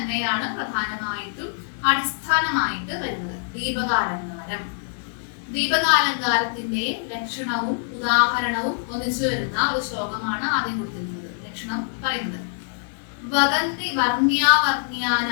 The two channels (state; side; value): silent; right; digital silence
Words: പ്രധാനമായിട്ടും അടിസ്ഥാനമായിട്ട് വരുന്നത്. ദീപകാലങ്കാരം. ദീപകാലങ്കാരത്തിന്റെ ലക്ഷണവും ഉദാഹരണവും ഒന്നിച്ചു വരുന്ന ഒരു ശ്ലോകമാണ് ആദ്യം കൊടുത്തിരിക്കുന്നത്. ലക്ഷണം പറയുന്നത്: വദന്തി